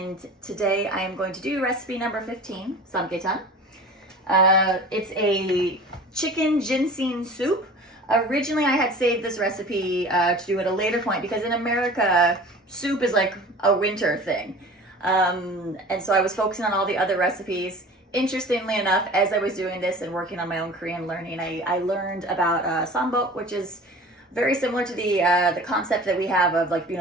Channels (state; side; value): normal; both; correlation 0.40